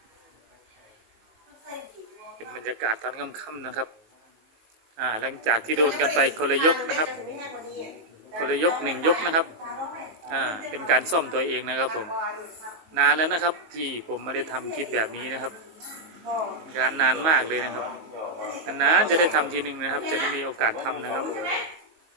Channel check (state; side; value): late; left; 19 ms